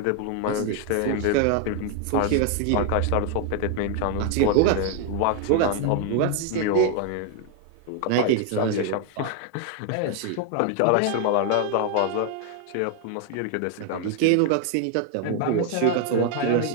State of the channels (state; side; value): different; both; correlation 0.00